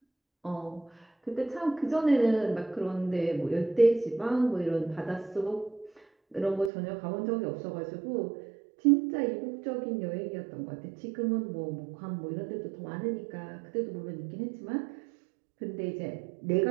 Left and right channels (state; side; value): drops out; left; at 6.7 s